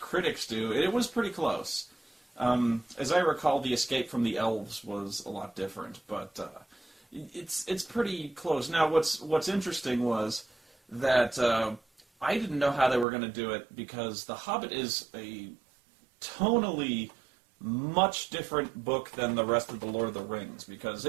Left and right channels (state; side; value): drops out; left; at 13.1 s